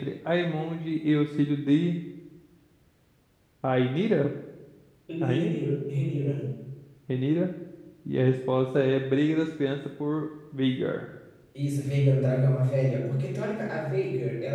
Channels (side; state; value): both; identical; correlation 1.00